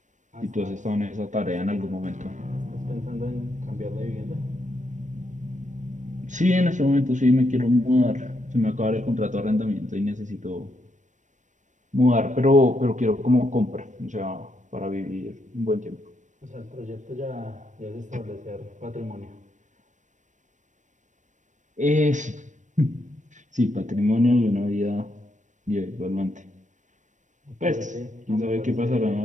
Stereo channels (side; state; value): left; late; 0.35 ms